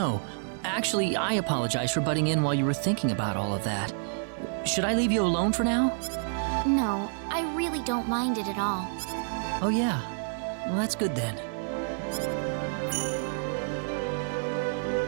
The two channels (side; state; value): left; silent; digital silence